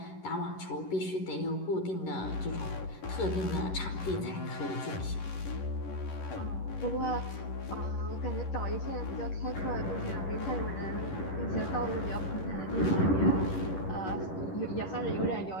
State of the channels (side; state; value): right; late; 11 ms